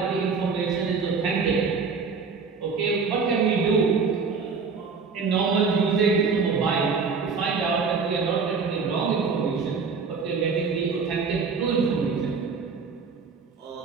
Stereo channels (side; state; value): left; quieter; 5.1 dB